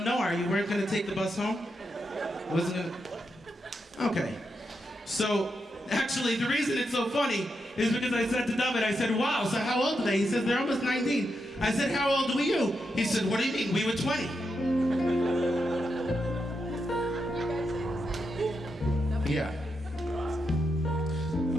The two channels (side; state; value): both; normal; correlation 0.84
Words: Noir. You weren't going to take the bus home? Wasn't gonna... Okay. So, actually, the reason it's so funny is because I said to David, I said, wow, so how old are they? He says, they're almost 19. I said, how old were you? He said, what do you mean? We were 20. Yeah.